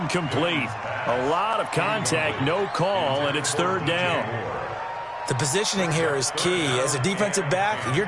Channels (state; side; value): identical; both; correlation 1.00